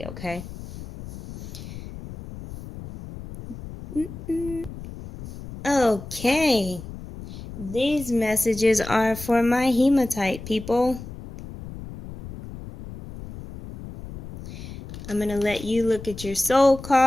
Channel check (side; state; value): left; noise; rumble, 13 dB below the sound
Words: okay? Okay. These messages are for my hematite people. I'm going to let you look at your soul